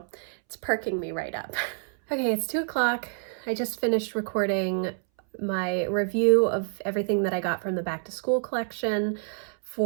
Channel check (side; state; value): left; silent; 60 dB below the other